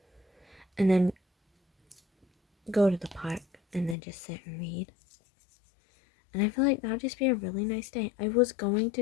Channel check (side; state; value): right; drops out; at 4.0 s